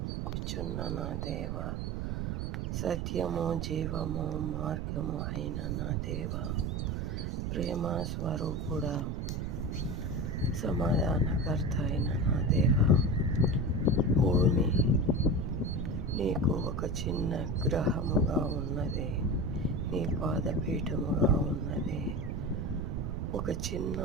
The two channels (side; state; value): right; noise; rumble, 2 dB below the sound